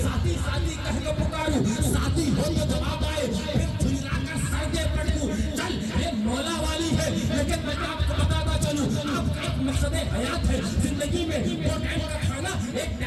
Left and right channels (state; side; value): identical; both; correlation 1.00